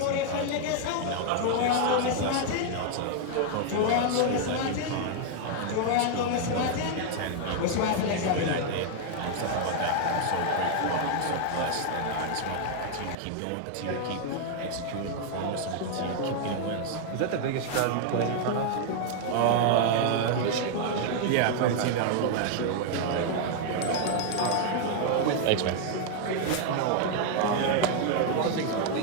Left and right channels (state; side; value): different; both; correlation 0.00